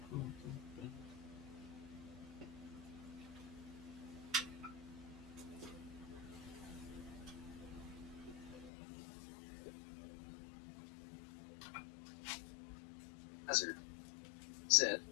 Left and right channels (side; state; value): right; drops out; at 8.7 s